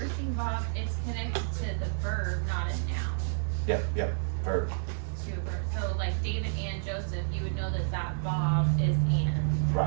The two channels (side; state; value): left; silent; 58 dB below the other